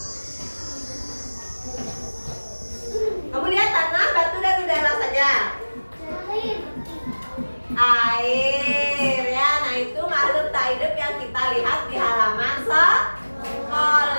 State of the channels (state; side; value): inverted; both; correlation -1.00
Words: Kamu lihat tanah, batu, dan udara saja. Air ya, nah itu makhluk tak hidup yang kita lihat di halaman sekolah.